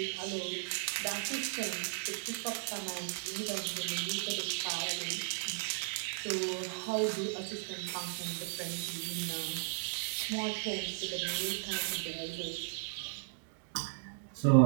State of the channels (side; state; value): left; silent; digital silence